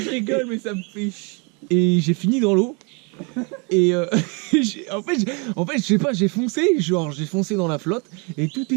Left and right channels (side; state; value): left; quieter; 32.8 dB